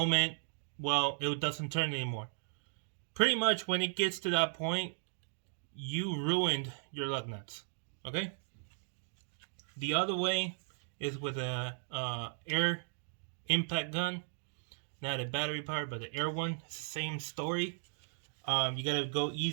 well, it doesn't turn anymore. Pretty much when it gets to that point, you ruined your lug nuts. Okay? The other way is with a air impact gun. Not a battery powered, but the air one. It's the same story. You gotta go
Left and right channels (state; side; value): silent; left; digital silence